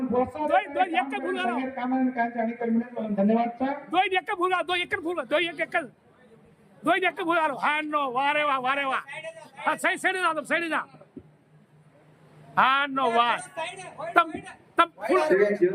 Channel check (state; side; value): identical; both; correlation 1.00